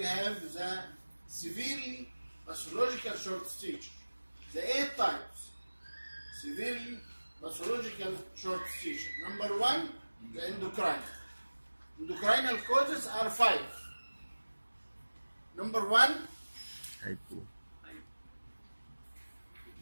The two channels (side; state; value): both; inverted; correlation -1.00